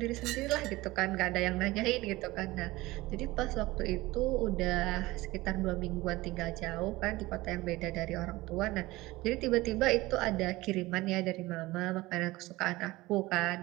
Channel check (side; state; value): left; quieter; 19.7 dB